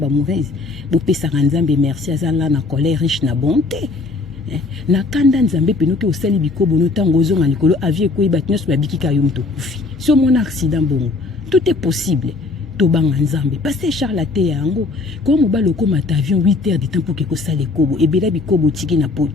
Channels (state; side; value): quieter; right; 3.7 dB